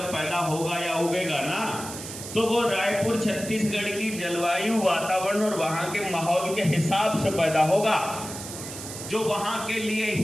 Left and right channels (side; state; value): right; noise; hiss, 10 dB below the sound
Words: पैदा होगा या उगेगा ना, तो वो रायपुर छत्तीसगढ़ की जलवायु, वातावरण और वहाँ के माहौल के हिसाब से पैदा होगा, जो वहाँ के लिए